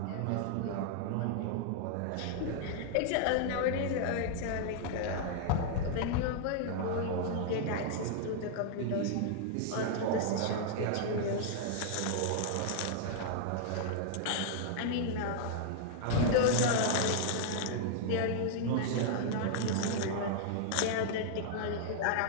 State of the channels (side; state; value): both; different; correlation -0.01